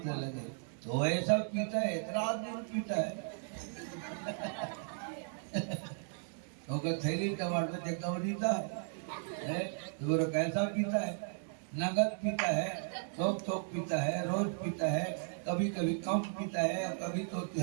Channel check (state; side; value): silent; left; digital silence